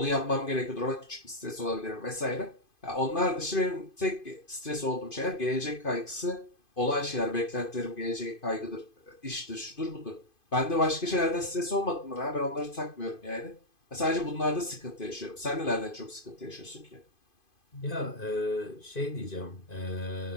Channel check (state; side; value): late; right; 2.5 ms